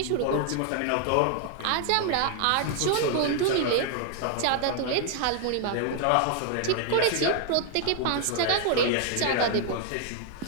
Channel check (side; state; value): both; different; correlation 0.00